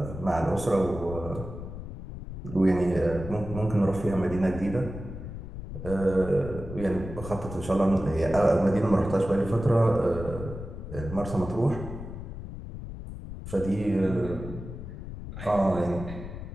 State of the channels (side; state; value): left; noise; rumble, 10 dB below the sound